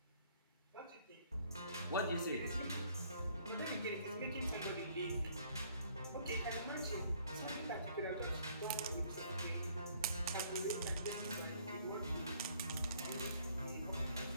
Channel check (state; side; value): inverted; both; correlation -0.61